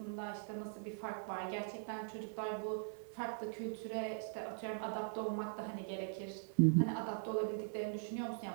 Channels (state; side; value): silent; left; 50 dB below the other